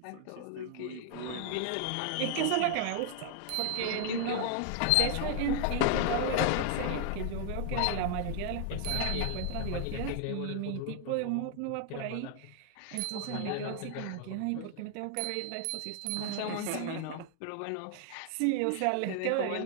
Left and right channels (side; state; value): both; different; correlation 0.00